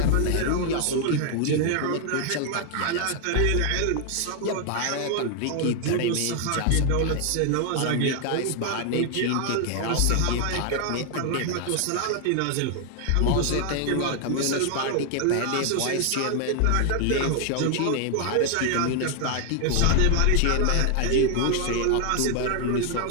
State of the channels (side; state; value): both; different; correlation 0.00